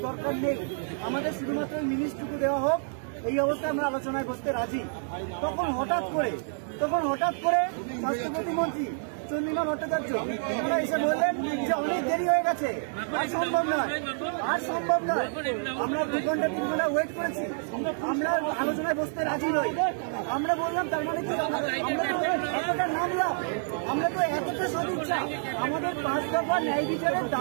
দরকার নেই, আমাদের শুধুমাত্র মিনিটটুকু দেওয়া হোক, এই অবস্থায় আমরা আলোচনায় বসতে রাজি। তখন হঠাৎ করে স্বাস্থ্য প্রতিমন্ত্রী চন্দ্রিমা ভট্টাচার্য ওরা এসে বললেন যে অনেক দেরি হয়ে গেছে, আর সম্ভব নয়। আমরা 2 ঘন্টা 3 ঘন্টা ওয়েট করেছি, আমরা আলোচনায় বসতে রাজি নই। আমরা বললাম তার মানে কি, আমরা এতটা নামলাম, আমরা তো এতটা সদিচ্ছা। আমাদের 5 দফা ন্যায়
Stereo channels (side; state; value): left; silent; digital silence